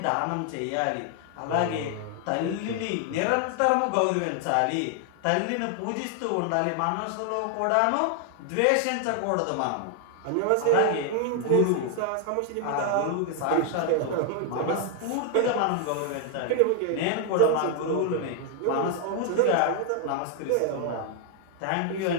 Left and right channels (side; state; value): both; different; correlation 0.00